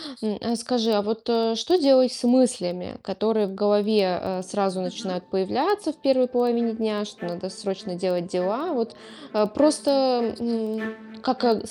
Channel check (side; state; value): both; identical; correlation 1.00